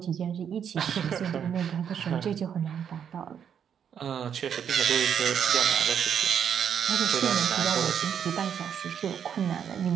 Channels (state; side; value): quieter; left; 8.2 dB